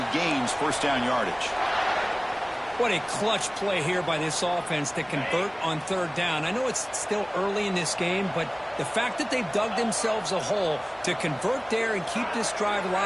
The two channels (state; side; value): identical; both; correlation 1.00